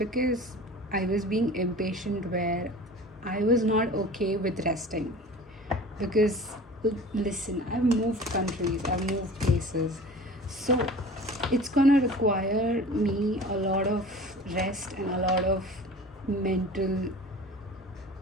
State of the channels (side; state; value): both; normal; correlation 0.40